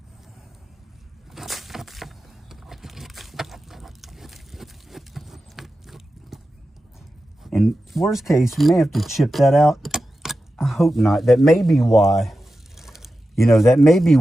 And worst case, we may have to chip that out. I hope not. That may be why, you know, that may be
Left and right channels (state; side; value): normal; both; correlation 0.92